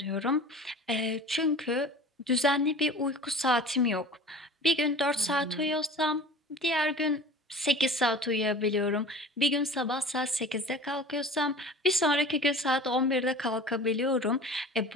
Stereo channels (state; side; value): normal; both; correlation 0.39